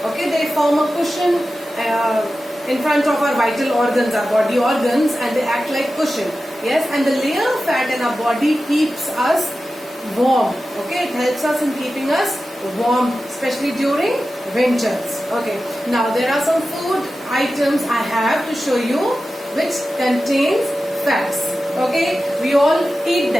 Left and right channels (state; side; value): normal; both; correlation 0.93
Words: Okay, they form a cushion in front of our vital organs, our body organs, and they act like cushion. Yes, and the layer of fat in our body keeps us warm. Okay, it helps us in keeping us warm, especially during winters. Okay, now there are some food items I have to show you which contains fats. Okay, we all eat